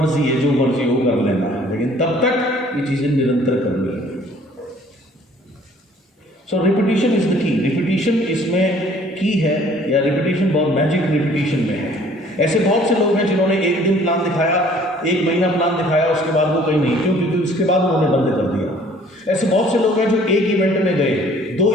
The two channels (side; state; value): both; normal; correlation 0.56